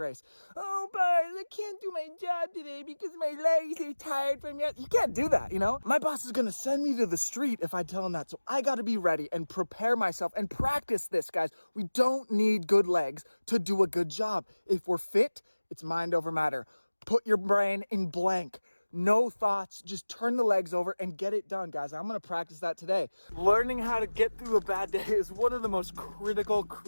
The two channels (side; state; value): both; inverted; correlation -1.00